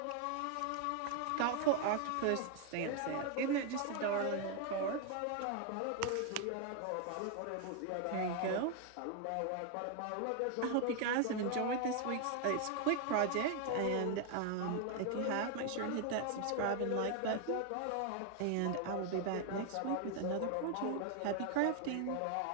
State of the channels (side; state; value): both; different; correlation 0.00